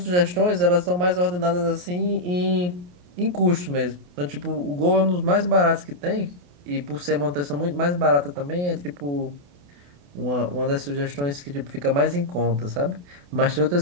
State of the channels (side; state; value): left; late; 28 ms